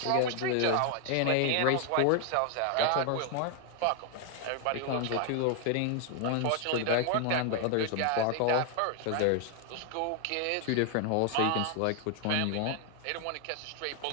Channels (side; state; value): both; different; correlation 0.00